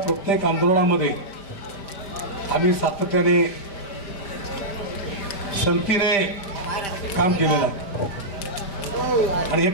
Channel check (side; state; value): right; late; 5.1 ms